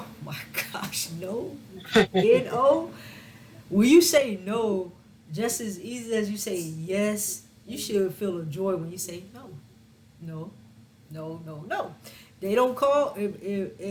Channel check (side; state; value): both; identical; correlation 1.00